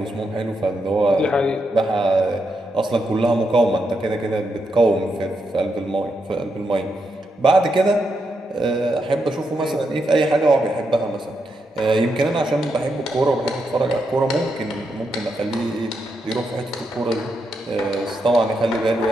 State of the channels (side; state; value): both; normal; correlation 0.82